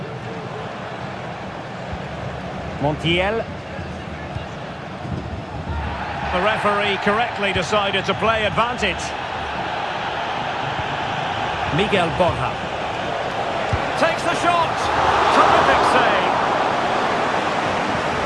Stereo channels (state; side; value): identical; both; correlation 1.00